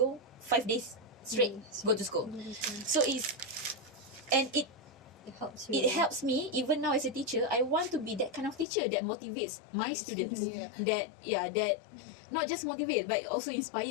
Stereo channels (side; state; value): right; drops out; at 8.7 s